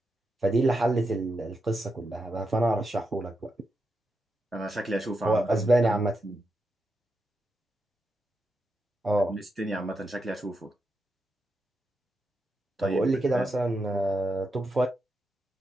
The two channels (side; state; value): both; normal; correlation 0.85